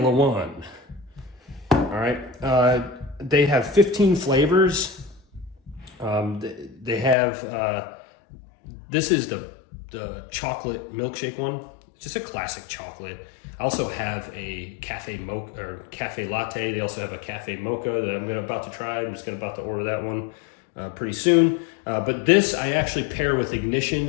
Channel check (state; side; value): drops out; right; at 7.2 s